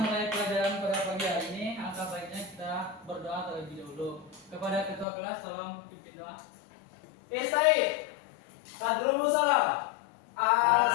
pelajaran pada pagi hari ini, alangkah baiknya kita berdoa terlebih dahulu. Kepada ketua kelas, tolong pimpin doa. Istai. Tadrumu salam.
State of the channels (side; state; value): right; drops out; at 5.1 s